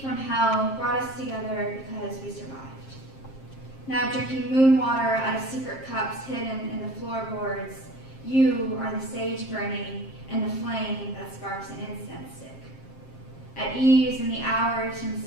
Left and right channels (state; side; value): late; right; 7.5 ms